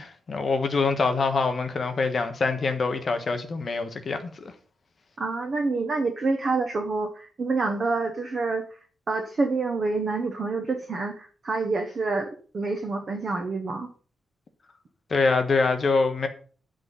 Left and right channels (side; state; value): both; normal; correlation 0.82